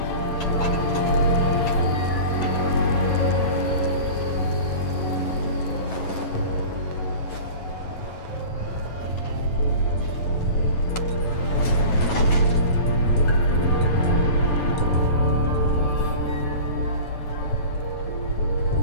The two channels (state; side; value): late; right; 9.2 ms